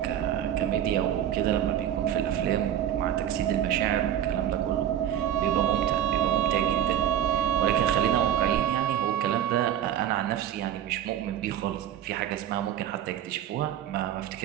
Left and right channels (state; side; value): quieter; left; 10.7 dB